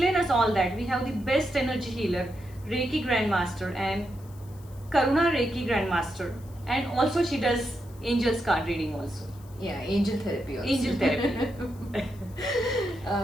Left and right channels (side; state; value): left; noise; hiss, 26 dB below the sound